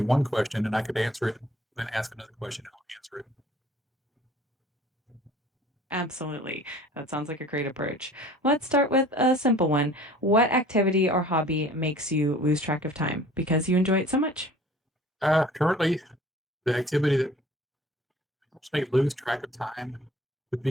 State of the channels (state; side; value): normal; both; correlation 0.49